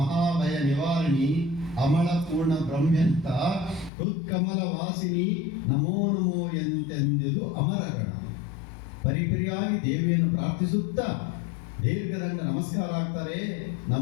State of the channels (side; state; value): right; drops out; at 3.9 s